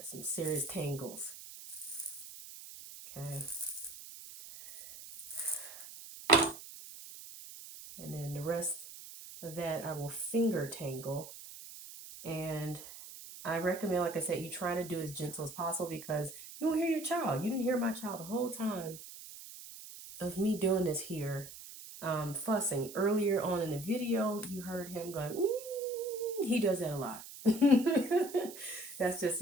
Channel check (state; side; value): noise; right; hiss, 14 dB below the sound